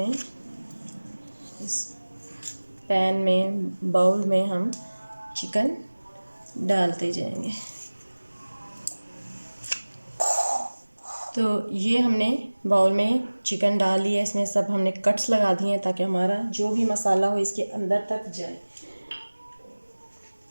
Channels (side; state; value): both; inverted; correlation -1.00